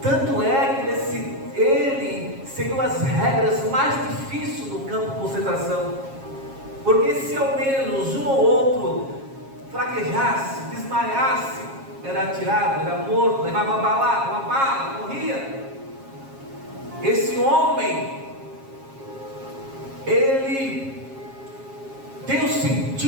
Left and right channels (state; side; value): late; left; 7.4 ms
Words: Tanto é que ele seguiu as regras mais difíceis do campo de concentração, porque se ao menos um ou outro fraquejasse, desmaiasse, era atirado, era morto, levava uma bala, morria. Esse homem, ele tem um